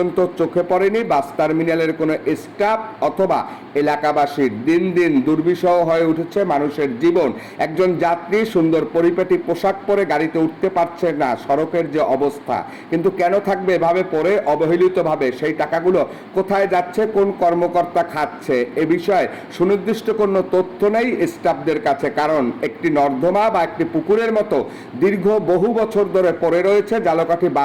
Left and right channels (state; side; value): identical; both; correlation 1.00